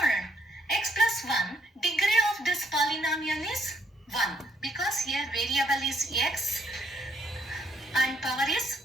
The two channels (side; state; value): both; normal; correlation 0.70